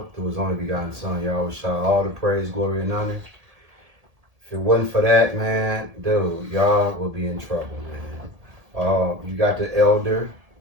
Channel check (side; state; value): left; late; 1.8 ms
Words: through His only begotten Son, Yahweh Shah, all the praise, glory, and honor. If it wasn't for that, man, dude, y'all will be in trouble, man. You got the elder,